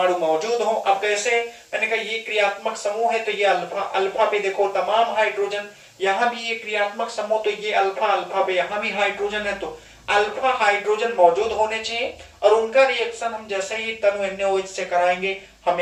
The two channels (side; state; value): both; identical; correlation 1.00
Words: मौजूद हो। अब कैसे, मैंने कहा ये क्रियात्मक समूह है तो ये अल्फा पे देखो तमाम हाइड्रोजन, यहाँ भी ये क्रियात्मक समूह तो ये अल्फा पे यहाँ भी हाइड्रोजन है, तो अल्फा हाइड्रोजन मौजूद होने चाहिए। और उनका रिएक्शन हम जैसे ही तनु NaOH से कराएंगे